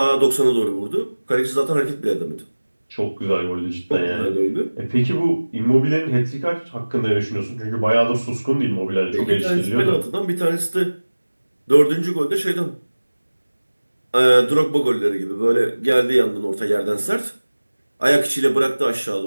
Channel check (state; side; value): inverted; both; correlation -1.00